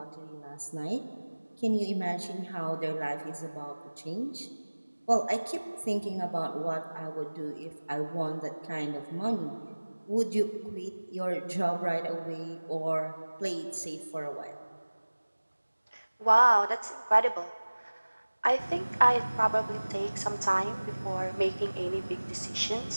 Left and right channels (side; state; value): both; inverted; correlation -1.00